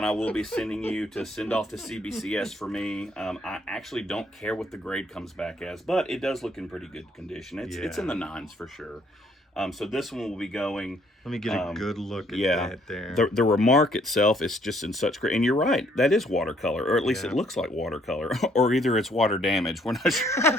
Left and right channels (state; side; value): normal; both; correlation 0.65